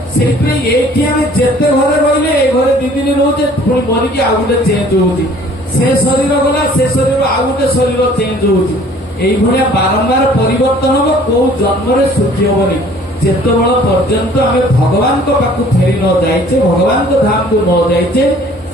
से जेते घरे रही घरे दी दिन रोचे पुणी मरिकी आउ गोटे चेंज होती, से शरीर गला से शरीर आउ गोटे शरीर चेंज होती। यही बारंबार परिवर्तन हम कौ जन्म सुखी हेनी जिते बल पर्यंत आम भगवान को पाखु फेरी न जाइचे, भगवान को धाम को न जाइचे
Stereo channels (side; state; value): both; normal; correlation 0.53